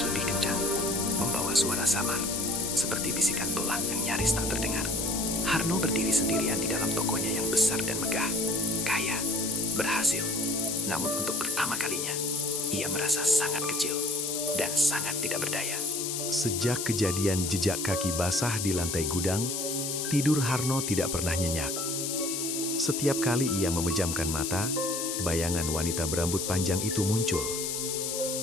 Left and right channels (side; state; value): left; noise; hiss, 2 dB below the sound